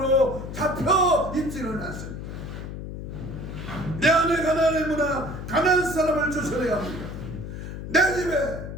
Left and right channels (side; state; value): left; noise; hum, 8 dB below the sound